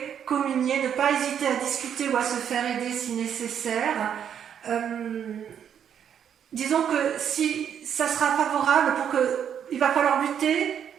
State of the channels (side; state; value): left; quieter; 8.7 dB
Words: communier, ne pas hésiter à discuter ou à se faire aider si nécessaire. Disons que si ça sera favorable il va falloir lutter